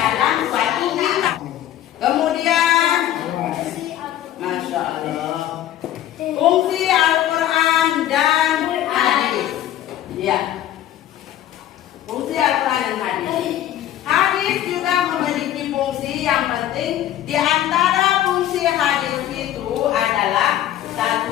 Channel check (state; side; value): quieter; right; 12.3 dB